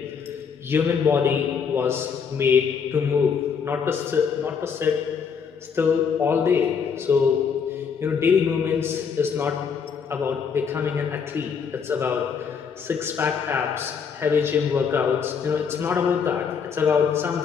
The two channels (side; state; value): right; quieter; 6.4 dB